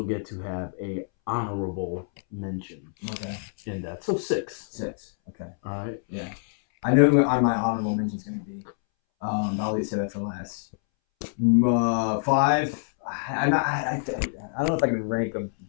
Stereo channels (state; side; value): silent; right; 61 dB below the other